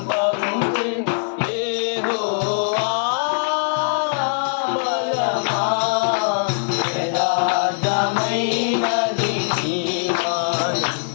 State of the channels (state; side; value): silent; right; 59 dB below the other